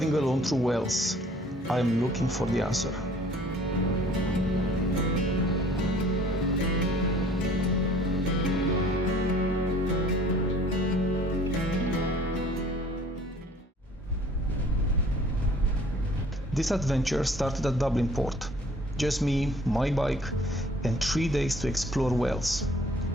alone through Wales, I am looking for the answer. This adventure started at Dublin Port. Just me, my bike, and 3 days to explore Wales.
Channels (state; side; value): normal; both; correlation 0.53